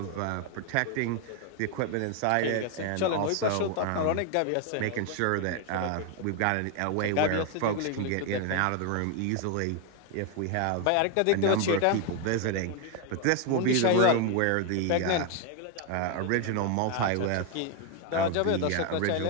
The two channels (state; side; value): different; both; correlation 0.01